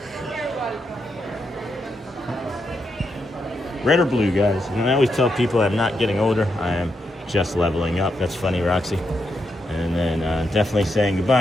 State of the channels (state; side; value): normal; both; correlation 0.82